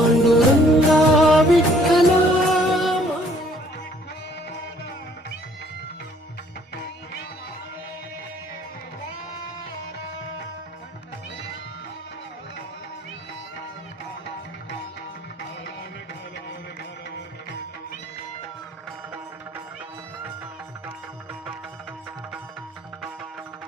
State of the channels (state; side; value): normal; both; correlation 0.60